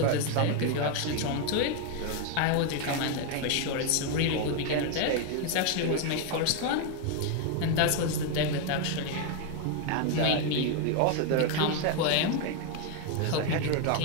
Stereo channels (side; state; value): both; different; correlation 0.01